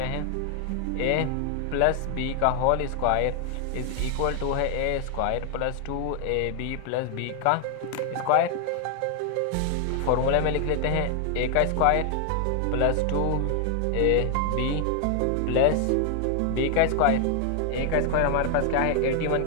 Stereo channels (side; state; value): both; different; correlation 0.00